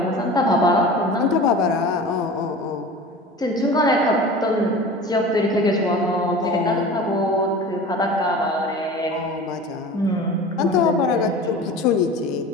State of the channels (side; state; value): both; normal; correlation 0.37